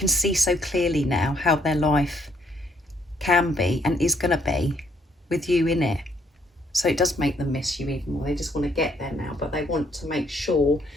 see so clearly now how their life can be and is going to be with you in it. So it does make them miss you even more. They just want to get there now, but they want to make sure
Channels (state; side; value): normal; both; correlation 0.69